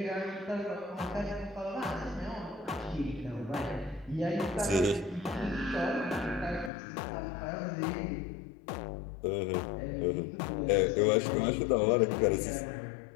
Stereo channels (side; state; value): right; drops out; at 6.7 s